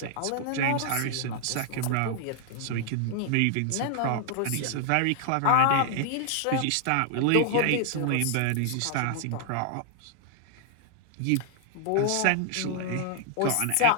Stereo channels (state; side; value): different; both; correlation 0.00